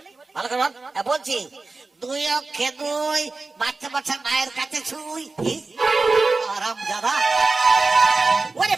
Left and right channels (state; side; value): quieter; left; 3.7 dB